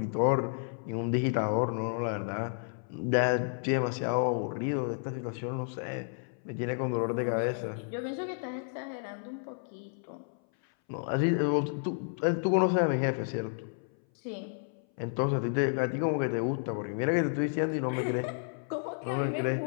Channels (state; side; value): silent; right; 57 dB below the other